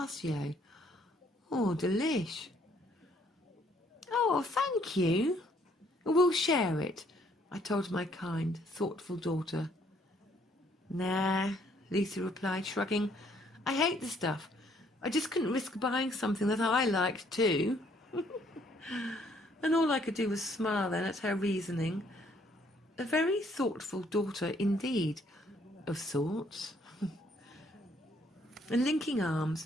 Oh, delish. Oh, thank you. We'll share it, I told my kind, thoughtful daughter. Nah, Lucy replied, shrugging. I hate the stuff. I just couldn't risk buying something that I liked too. And all I could do was smile then at her reasoning. A very thoughtful daughter indeed, of sorts. And linking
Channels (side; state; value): both; normal; correlation 0.65